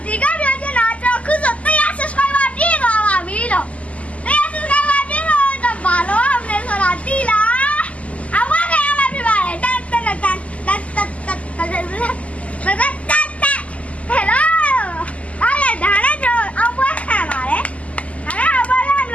ဒီကပြောချင်တာကျွန်တော်ခုဆို100 subscriber ပြည့်သွားပါပြီလို့100 subscriber ပြည့်တော့ဘာလို့အောင်လဲဆိုတာသိလားအဝါကရမှာပြပါလေတက်ဟယ်လိုအားရဒါလည်းကျွန်တော်အောင်ပွဲခံပါတယ်ဒါလည်းအောင်ပွဲခံလ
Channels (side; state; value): right; late; 0.067 ms